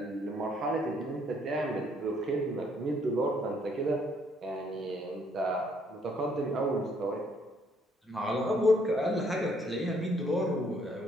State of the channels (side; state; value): both; normal; correlation 0.67